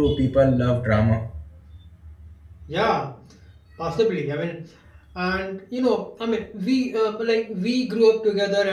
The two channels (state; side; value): identical; both; correlation 1.00